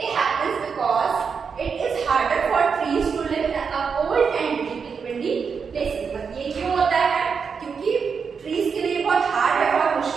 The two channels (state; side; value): quieter; left; 5.9 dB